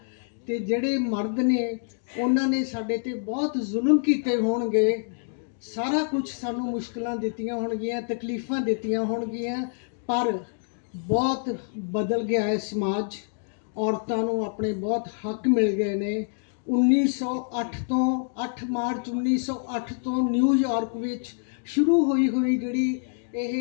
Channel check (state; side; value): silent; right; digital silence